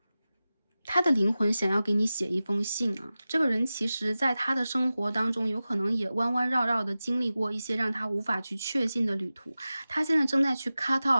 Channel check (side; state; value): both; inverted; correlation -0.95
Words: 他的灵魂想要给你写一封信这个人其实在他的生活当中有可能也弯弯绕绕的经历过一些让他无法去确信的旅途，他现在正在去 cut